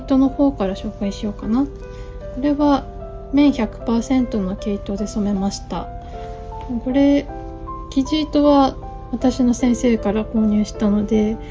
の方から紹介しようかな。これは綿 100% の毛糸で染めました。これ生地糸は私の先生から購入したので、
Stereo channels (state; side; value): identical; both; correlation 1.00